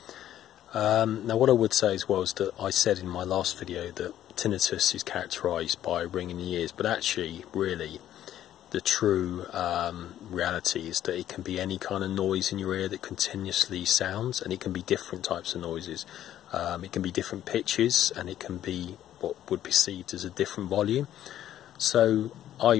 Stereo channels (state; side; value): quieter; right; 11.9 dB